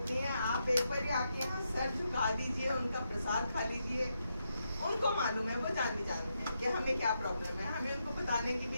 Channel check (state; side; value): inverted; both; correlation -0.83